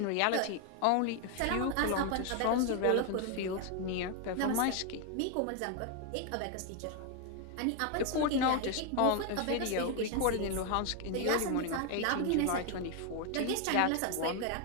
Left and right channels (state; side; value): different; both; correlation 0.01